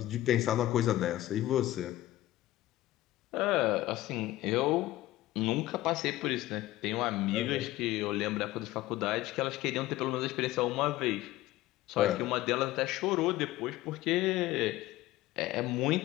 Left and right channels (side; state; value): right; quieter; 16.1 dB